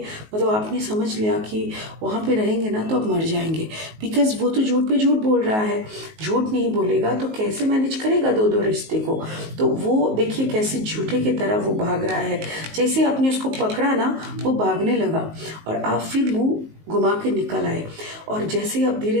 मतलब आपने समझ लिया कि वहाँ पे रहेंगे ना तो आप मर जाएंगे, बिकॉज़ वो तो झूठ पे झूठ बोल रहा है, झूठ नहीं बोलेगा तो कैसे मैनेज करेगा दो दो रिश्ते को। तो वो देखिए कैसे झूठे की तरह वो भाग रहा है, जैसे आपने उसको पकड़ा ना वो भागने लगा और आप फिर मुँह घुमा के निकल आए। और जैसे ही आप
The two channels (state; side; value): late; left; 19 ms